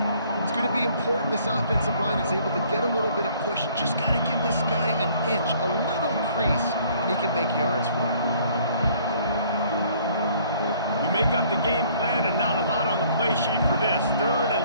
It's going to be important this offensive line is able to get a little bit of push. Just got to give this guy an inch, a little crease, and he can make yards for you. You make up the game plan and not a lot on the play sheet for this. Third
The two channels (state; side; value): inverted; both; correlation -0.59